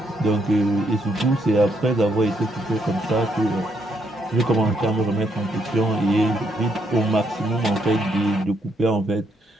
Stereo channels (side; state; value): both; normal; correlation 0.75